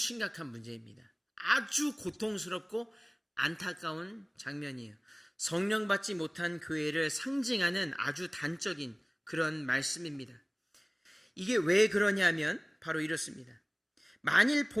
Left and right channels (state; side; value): identical; both; correlation 1.00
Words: 문제입니다. 아주 고통스럽고 안타까운 장면이에요. 성령 받지 못한 교회를 상징하는 아주 단적인 그런 말씀입니다. 이게 왜 그러냐면 바로 이렇습니다. 만일